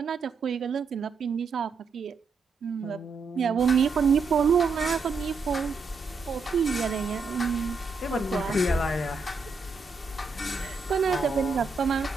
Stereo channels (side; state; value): left; quieter; 4.4 dB